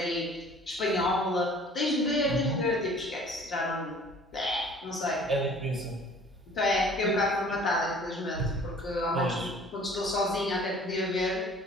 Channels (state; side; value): normal; both; correlation 0.50